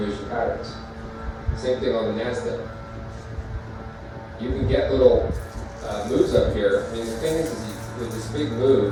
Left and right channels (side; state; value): both; identical; correlation 1.00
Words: patterns. Same thing on the NASDAQ. You can get little moves up here. I mean, the thing is with this big